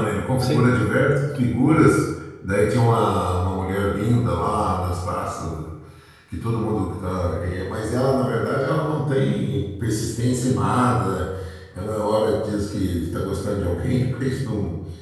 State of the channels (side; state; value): both; identical; correlation 1.00